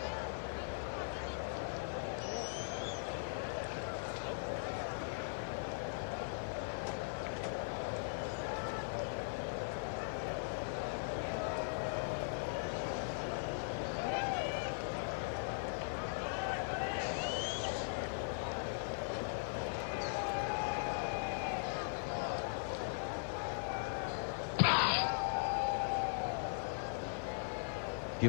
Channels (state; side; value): silent; right; digital silence